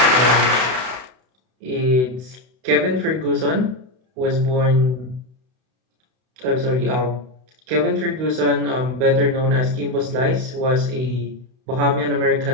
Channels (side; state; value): left; late; 32 ms